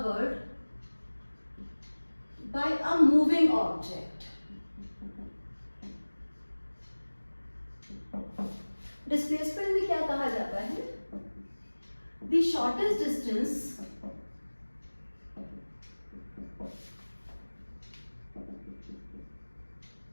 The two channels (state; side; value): inverted; both; correlation -1.00